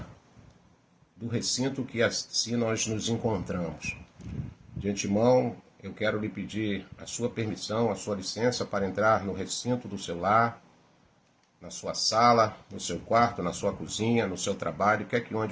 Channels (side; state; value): both; identical; correlation 1.00